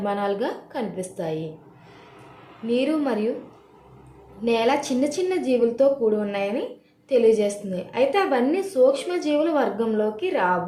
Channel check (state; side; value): identical; both; correlation 1.00